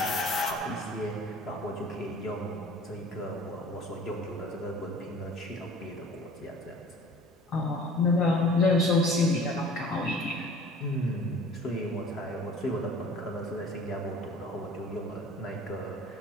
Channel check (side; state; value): both; normal; correlation 0.47